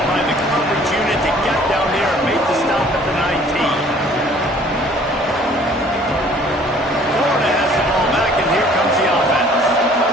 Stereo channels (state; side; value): normal; both; correlation 0.54